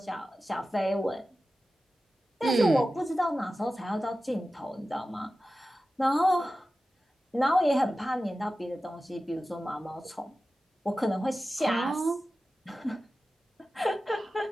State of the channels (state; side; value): normal; both; correlation 0.94